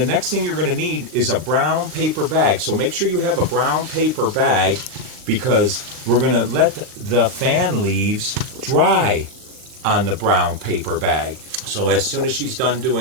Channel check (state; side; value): late; left; 39 ms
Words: next thing you're going to need is a brown paper bag. So make sure you have a brown paper bag because we're going to let the fan leaves dry on the brown paper bag. So as soon as she's done